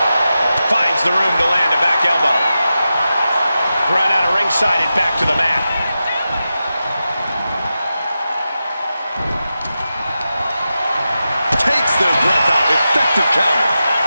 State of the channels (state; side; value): inverted; both; correlation -0.91